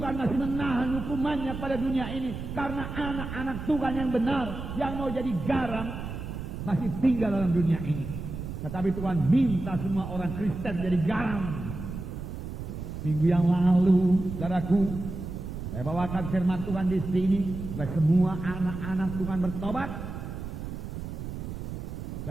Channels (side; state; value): right; noise; rumble, 7 dB below the sound